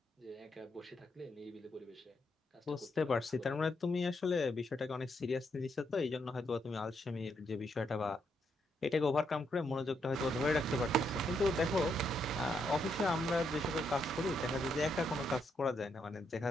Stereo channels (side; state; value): both; normal; correlation 0.78